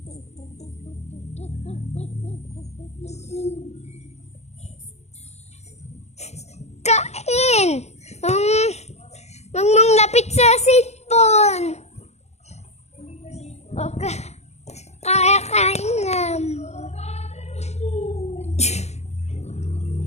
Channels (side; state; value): right; late; 0.32 ms